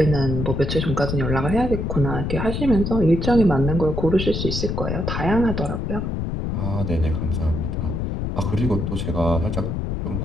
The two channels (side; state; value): left; noise; rumble, 2 dB below the sound